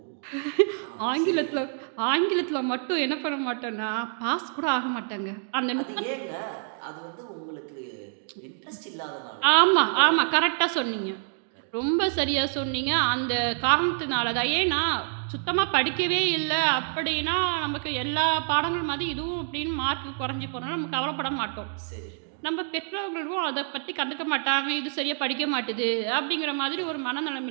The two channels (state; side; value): silent; left; 60 dB below the other